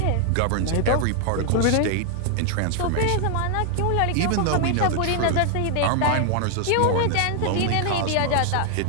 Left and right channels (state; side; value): different; both; correlation 0.00